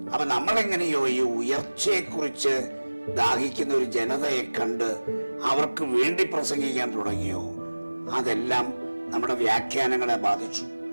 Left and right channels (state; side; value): inverted; both; correlation -1.00